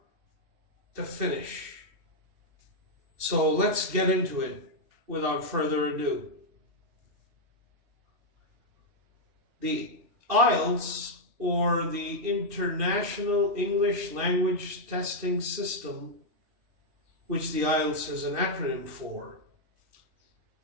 to finish. So let's get into it without further ado. The Ielts, or the International English Language Testing System, which the Ielts is an acronym for,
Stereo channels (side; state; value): left; late; 2.7 ms